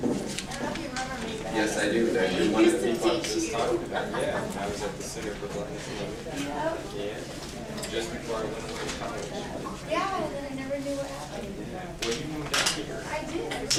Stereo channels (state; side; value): identical; both; correlation 1.00